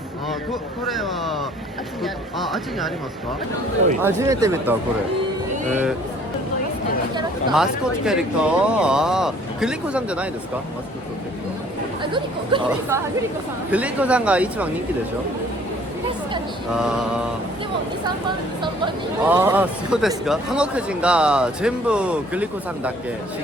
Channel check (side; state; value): both; normal; correlation 0.56